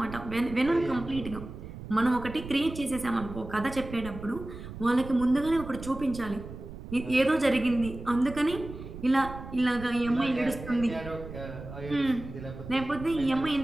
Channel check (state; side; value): noise; right; rumble, 12 dB below the sound